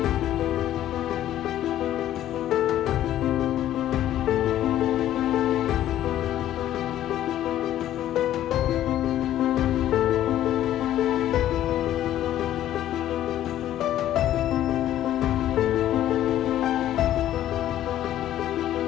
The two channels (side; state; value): right; quieter; 12.5 dB